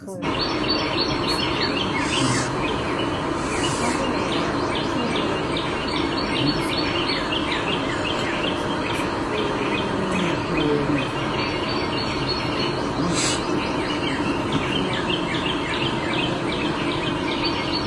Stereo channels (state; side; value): identical; both; correlation 1.00